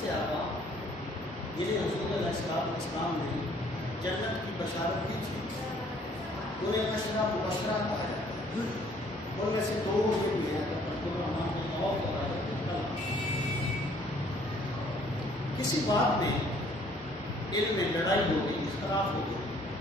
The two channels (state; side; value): normal; both; correlation 0.60